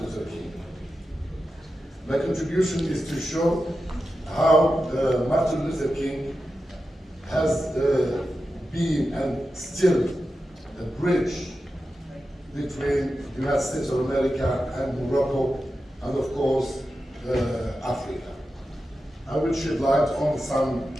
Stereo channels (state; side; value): normal; both; correlation 0.91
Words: Luther King. My contribution is to show how Martin Luther King has been and still a bridge between the United States of America and Morocco, and of course, Africa. I will shed light on some